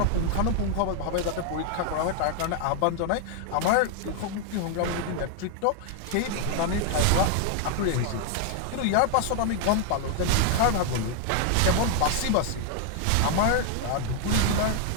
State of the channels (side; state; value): both; different; correlation 0.00